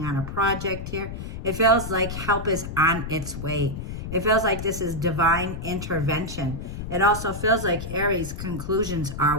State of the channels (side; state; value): left; noise; rumble, 7 dB below the sound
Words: on a project here. It feels like help is on its way. It feels like this is divine intervention. It also feels like Aries conclusions